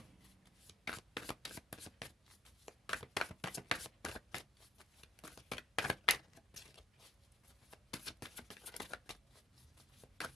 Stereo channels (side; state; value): both; normal; correlation 0.47